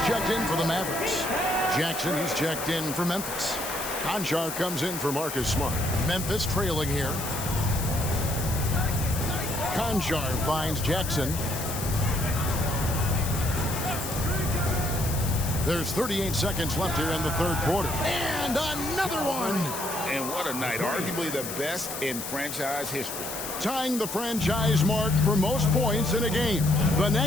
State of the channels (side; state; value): left; noise; hiss, 7 dB below the sound